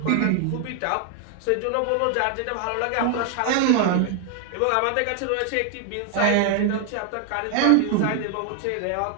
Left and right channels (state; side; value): different; both; correlation 0.00